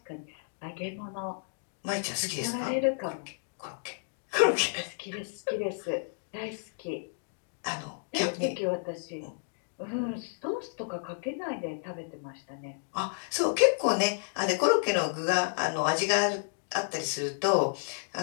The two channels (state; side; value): silent; right; digital silence